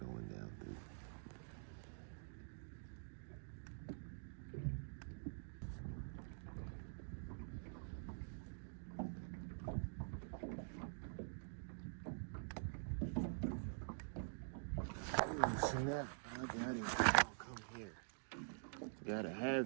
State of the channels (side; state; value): left; silent; digital silence